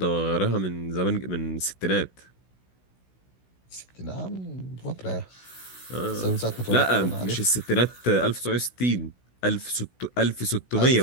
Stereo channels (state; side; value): late; right; 16 ms